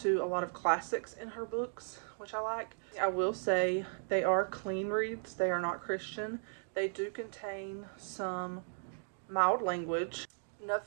to a lot of classics in her books, which I like. I will say they are clean reads. They are not Christian. They do contain some mild language,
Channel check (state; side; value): silent; left; digital silence